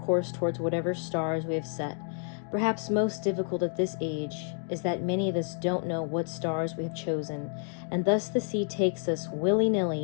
towards whatever stars we have set. Perhaps most difficult at this age is that many of us don't know what stars we have chosen, and thus the sea takes us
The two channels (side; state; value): right; silent; 58 dB below the other